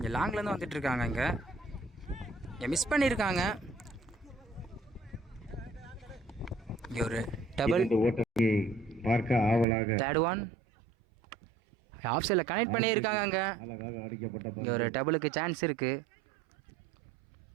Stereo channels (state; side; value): drops out; left; at 9.7 s